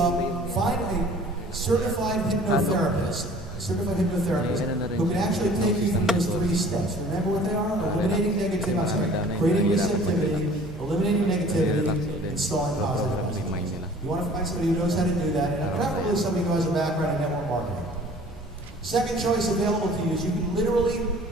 find a certified hypnotherapist who can actually take you through those 3 steps. Remember what they are? Eliminating negativity, creating receptivity, eliminating negativity, installing positive messages. You want to find somebody who knows how to do that, and preferably somebody who has a background in network marketing. Second choice available to you is you can literally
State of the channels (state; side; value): normal; both; correlation 0.49